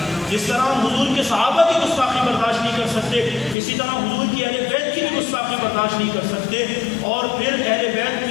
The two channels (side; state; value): right; drops out; at 3.6 s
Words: جس طرح ہم حضور کے صحابہ کی گستاخی برداشت نہیں کر اسی طرح حضور کی اہل بیت کی بھی گستاخی برداشت نہیں کر سکتے. اور پھر اہل بیت